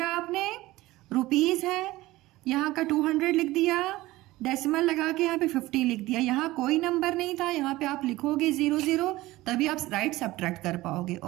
आपने, रुपीज़ है, यहाँ का 200 लिख दिया, डेसिमल लगा के यहाँ पे 50 लिख दिया। यहाँ कोई नंबर नहीं था, यहाँ पे आप लिखोगे 0 0, तभी आप राइट सब्ट्रैक्ट कर पाओगे।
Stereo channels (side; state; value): left; quieter; 18.2 dB